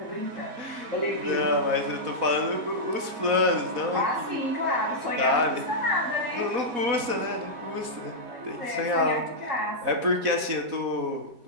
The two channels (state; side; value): late; left; 4.1 ms